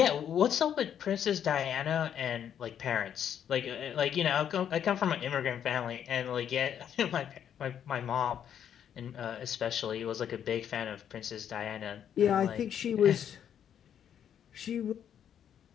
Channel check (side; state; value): right; quieter; 9.2 dB